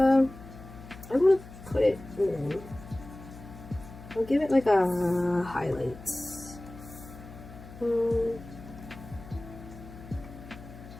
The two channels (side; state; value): left; noise; hum, 16 dB below the sound